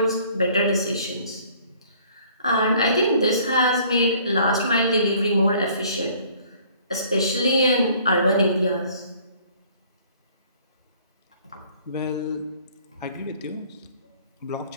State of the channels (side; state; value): both; inverted; correlation -0.57